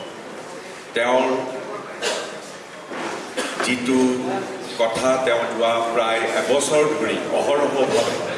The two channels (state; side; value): identical; both; correlation 1.00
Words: তেওঁৰ যিটো কথা তেওঁ যোৱা প্ৰায় এবছৰ ধৰি অহৰহভাৱে